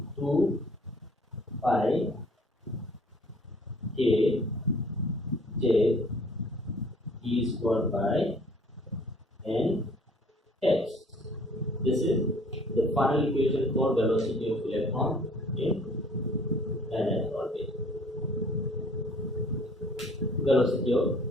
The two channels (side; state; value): both; normal; correlation 0.55